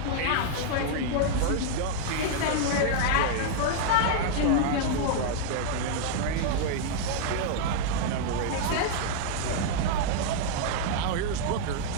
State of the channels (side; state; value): both; different; correlation -0.01